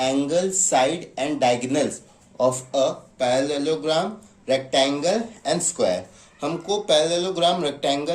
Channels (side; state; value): both; identical; correlation 1.00